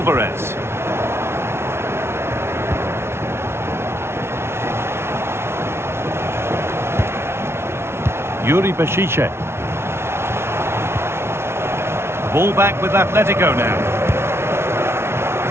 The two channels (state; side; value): late; left; 0.12 ms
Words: Yuri Bešice. Ball back with Atletico now.